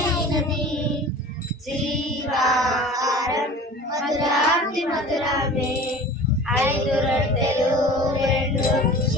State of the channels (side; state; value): both; normal; correlation 0.40